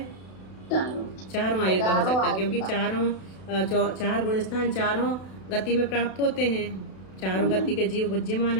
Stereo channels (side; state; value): right; late; 32 ms